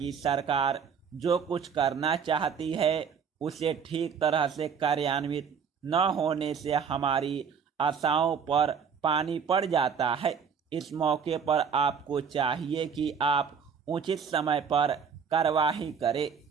सरकार जो कुछ करना चाहती है, उसे ठीक तरह से कार्यान्वित न होने से हमारी आशाओं पर पानी पड़ जाता है। इस मौके पर आपको चाहिए कि आप उचित समय पर कार्यवाही करें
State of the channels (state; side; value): quieter; left; 6.7 dB